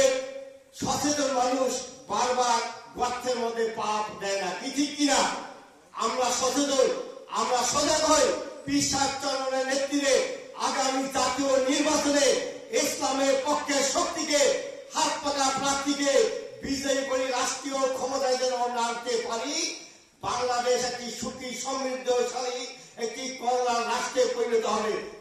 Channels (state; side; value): identical; both; correlation 1.00